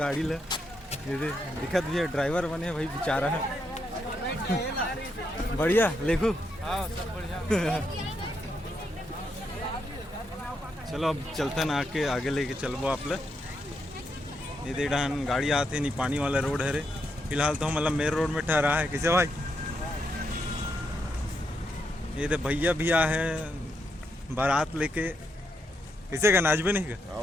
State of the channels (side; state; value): both; normal; correlation 0.80